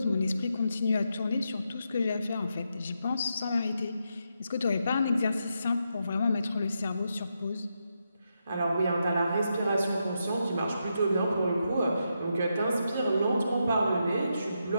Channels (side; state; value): both; inverted; correlation -0.84